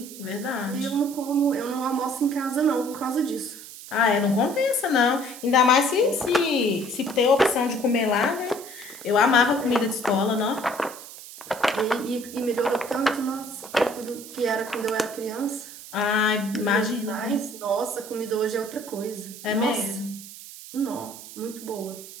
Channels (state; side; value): noise; right; hiss, 15 dB below the sound